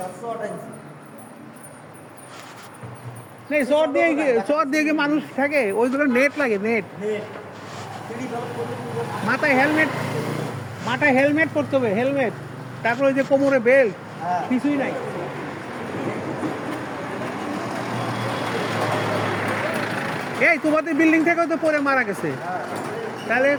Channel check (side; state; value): both; identical; correlation 1.00